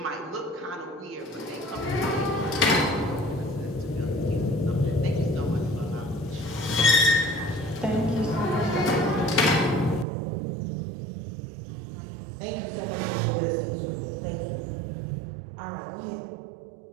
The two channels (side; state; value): left; drops out; at 10.1 s